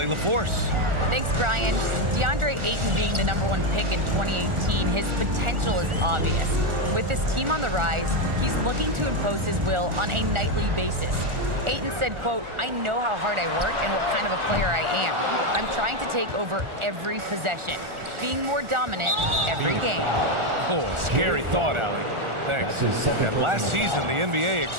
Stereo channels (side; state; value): left; late; 1.4 ms